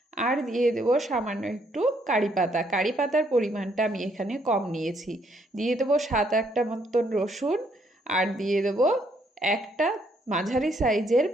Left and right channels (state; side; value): normal; both; correlation 0.70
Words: আর দিয়ে দেবো সামান্য একটু কারি পাতা। কারি পাতার পরিমাণটা আমি এখানে কম নিয়েছি। দিয়ে দেবো 7-8টা মতন রসুন, আর দিয়ে দেবো একটা মাঝারি সাইজের